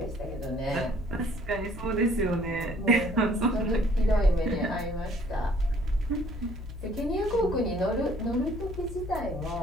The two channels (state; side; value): normal; both; correlation 0.59